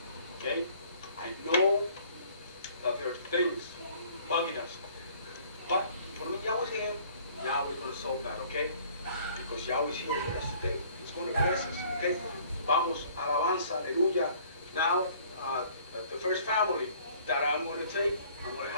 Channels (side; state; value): both; inverted; correlation -0.56